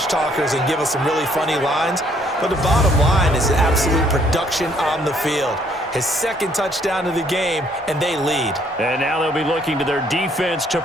talkers and give us some really funny lines. But the bottom line is absolute production on the field. His 2nd touchdown of the game, and they lead. And now they'll be looking to their defense to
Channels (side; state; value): both; normal; correlation 0.65